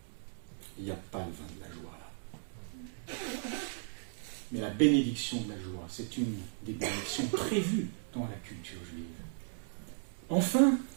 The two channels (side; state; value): left; silent; digital silence